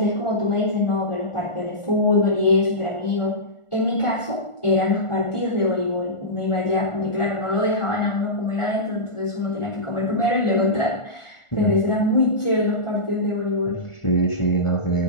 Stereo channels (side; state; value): right; late; 1.4 ms